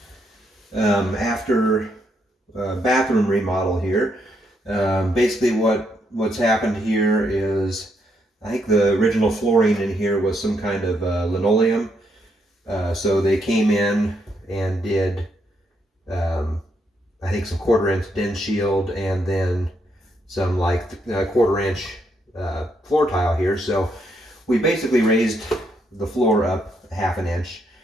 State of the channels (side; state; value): both; normal; correlation 0.76